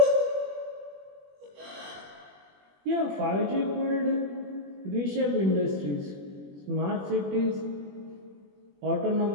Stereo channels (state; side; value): late; left; 21 ms